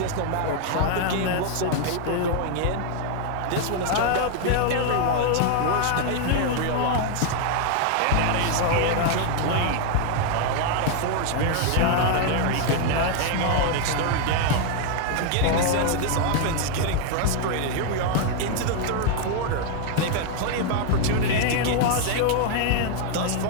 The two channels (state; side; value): different; both; correlation 0.00